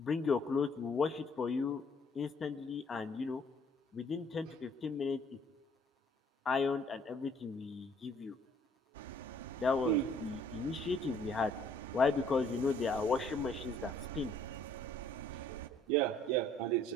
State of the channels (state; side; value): normal; both; correlation 0.60